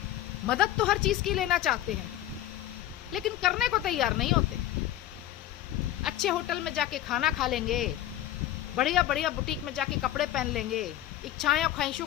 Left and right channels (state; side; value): quieter; right; 13.2 dB